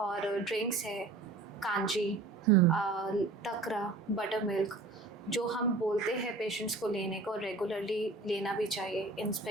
ड्रिंक्स है, कांजी, तकरा, बटर मिल्क, जो हम बोलते हैं पेशेंट्स को लेने को, रेगुलरली लेना भी चाहिए, इन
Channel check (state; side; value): quieter; left; 3.4 dB